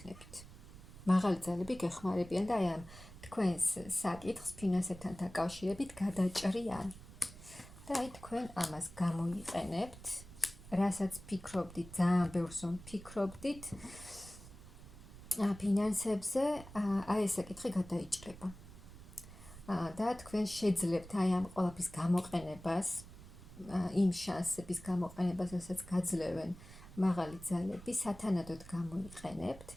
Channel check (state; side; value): noise; right; rumble, 17 dB below the sound